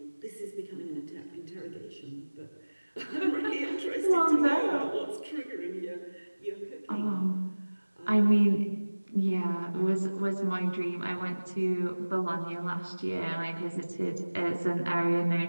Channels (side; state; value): both; inverted; correlation -1.00